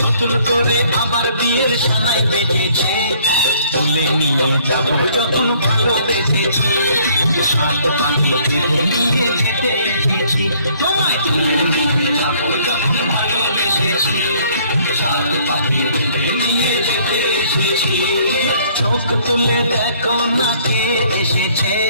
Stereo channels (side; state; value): both; inverted; correlation -0.61